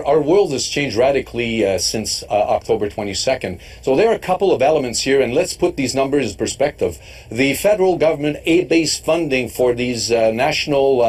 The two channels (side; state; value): both; identical; correlation 1.00